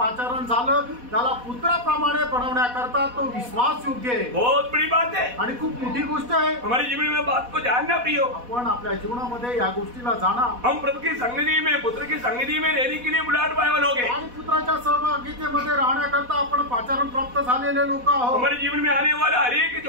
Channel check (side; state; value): left; late; 4.1 ms